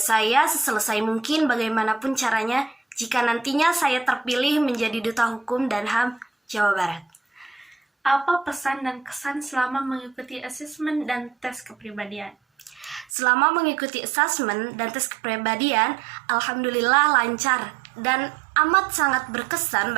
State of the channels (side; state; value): left; drops out; at 13.1 s